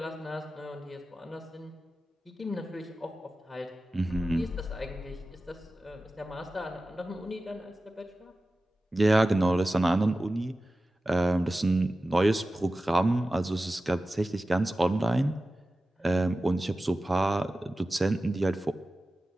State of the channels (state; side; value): normal; both; correlation 0.95